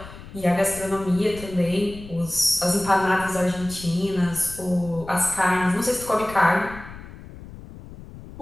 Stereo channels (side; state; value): left; noise; rumble, 15 dB below the sound